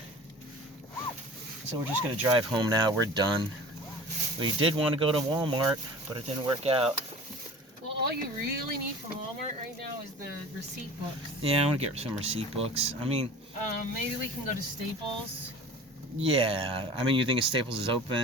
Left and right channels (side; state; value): both; normal; correlation 0.40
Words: So we're just gonna drive home now. We're done. We did want to go to Walmart, but it didn't work out. Well, all you really need from Walmart right now is the receipt books. Yeah, I want to get some receipt books. I mean, maybe we can go to Staples. Yeah, I mean, you think Staples is